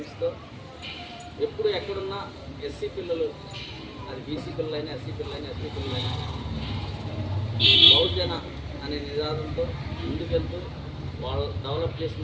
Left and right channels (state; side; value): identical; both; correlation 1.00